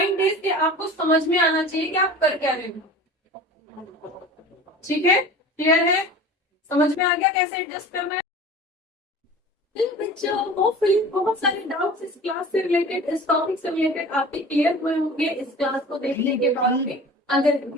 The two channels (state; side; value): normal; both; correlation 0.39